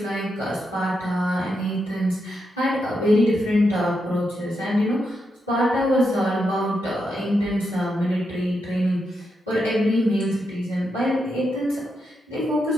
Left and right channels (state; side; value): normal; both; correlation 0.84